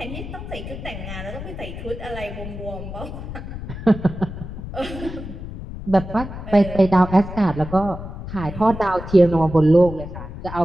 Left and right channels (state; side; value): noise; left; rumble, 9 dB below the sound